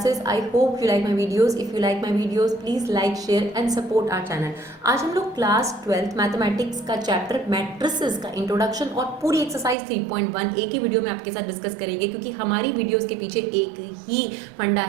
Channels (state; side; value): drops out; left; at 9.8 s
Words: I hope you like my videos. If you like my videos, please like, share and support our channel. आज हम लोग class 12th mathematics का chapter matrices का introduction और पूरी exercise 3.1 एक ही video में आपके साथ डिस्कस करेंगे, क्योंकि हमारी वीडियोस के पीछे एक ही फंडा